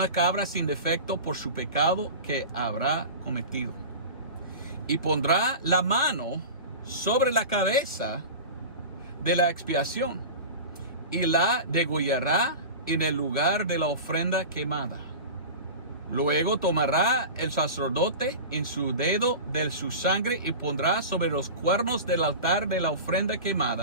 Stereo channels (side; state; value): both; inverted; correlation -0.31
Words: cabra sin defecto por su pecado que habrá cometido. Y pondrá la mano sobre la cabeza de la expiación y la degollará en el lugar de la ofrenda quemada. Luego tomará el sacerdote en su dedo de su sangre y pondrá sobre los cuernos del altar de la ofrenda